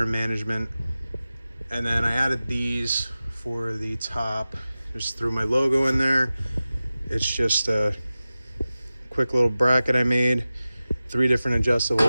management. And then I added these for the top, just threw my logo in there. It's just a quick little bracket I made, 3 different adjustable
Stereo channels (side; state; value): both; inverted; correlation -0.95